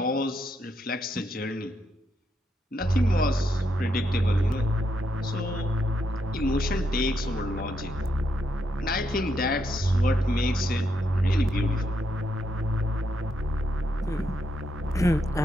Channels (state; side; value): normal; both; correlation 0.80